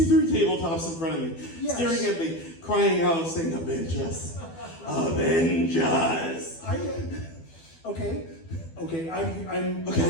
tabletops in front of me, staring at me, crying out, saying, "Avenge us, avenge us." Okay.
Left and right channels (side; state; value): right; late; 12 ms